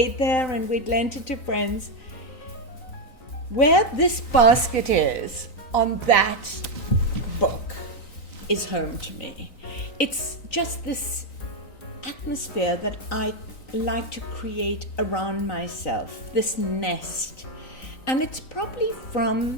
there and we'd lent it to friends, where this basket is on that book is home to me. It's just this atmosphere that I like to create around myself, this nest. And it's probably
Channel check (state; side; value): late; right; 3.9 ms